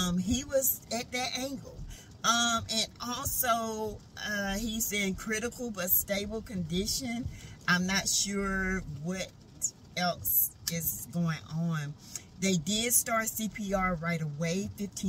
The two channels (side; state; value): both; identical; correlation 1.00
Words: He was at that angle. And also, he's in critical but stable condition. I'm not sure what else is going on. They did start CPR right away,